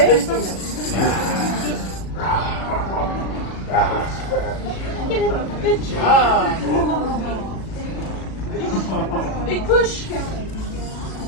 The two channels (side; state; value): right; late; 37 ms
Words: Good job. Big push.